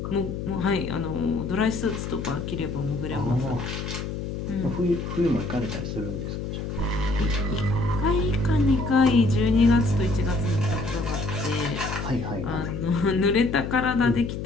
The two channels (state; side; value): noise; left; hum, 5 dB below the sound